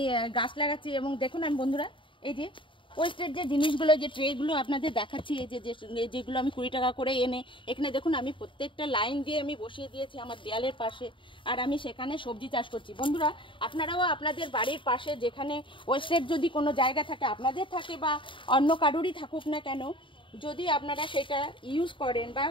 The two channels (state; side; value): late; right; 0.24 ms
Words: গাছ লাগাচ্ছি। এবং দেখুন আমি বন্ধুরা এই যে ওয়েস্টেড যে জিনিসগুলো, যে ট্রেগুলো আপনাদের দেখাচ্ছি, এই যে যেগুলো আমি 20 টাকা করে এনে এখানে দেখুন আমি প্রত্যেকটা লাইন দিয়ে আমি বসিয়ে দিয়েছি আমার দেয়ালের পাশে। আর আমি সেখানে সবজি চাষ করছি। বন্ধুরা আপনারাও আপনাদের বাড়ির পাশে যেখানে ওয়েস্টেড যদি কোনো জায়গা থাকে, আপনাদের থাকে বা অন্য কারোরই থাকুক না কেন, যদি আপনারা সেটা ইউজ করেন বা